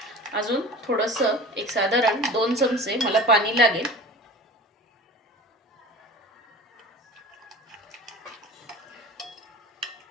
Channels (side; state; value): both; normal; correlation 0.36